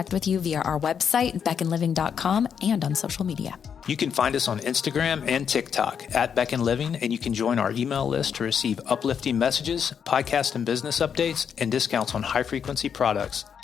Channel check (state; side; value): quieter; right; 7.5 dB